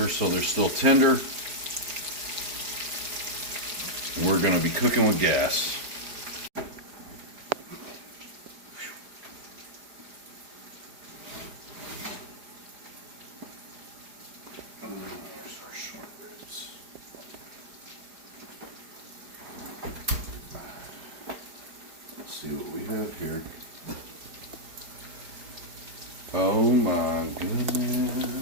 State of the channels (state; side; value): late; left; 4.9 ms